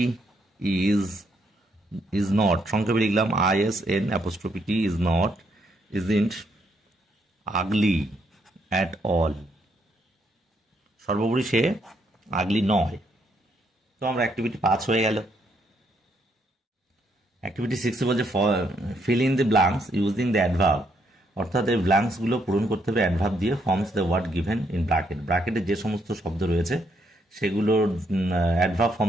ইজ নট, সংক্ষেপে লিখলাম ISN', isn't ugly at all, সর্বোপরি সে আগলি নয়। তো আমরা অ্যাক্টিভিটি 5 হয়ে গেল। অ্যাক্টিভিটি 6 বলছে fill in the blanks using the adverb, অর্থাৎ এই ব্ল্যাঙ্কসগুলো পূরণ করতে হবে অ্যাডভার্ব দিয়ে, forms the word given in bracket, ব্র্যাকেটে যে সমস্ত শব্দ রয়েছে সেগুলোর অ্যাডভার্ব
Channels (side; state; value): both; normal; correlation 0.74